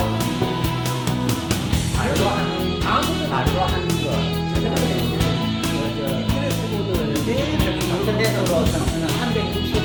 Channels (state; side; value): identical; both; correlation 1.00